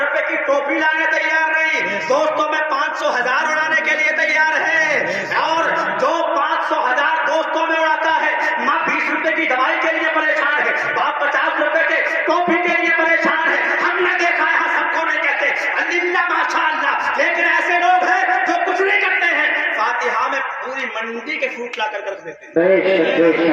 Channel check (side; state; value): both; identical; correlation 1.00